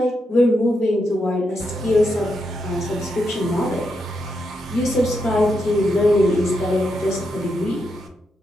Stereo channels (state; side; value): normal; both; correlation 0.83